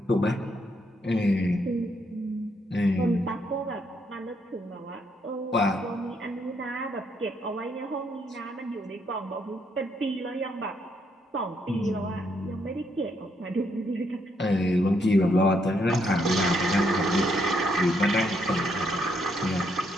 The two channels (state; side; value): normal; both; correlation 0.74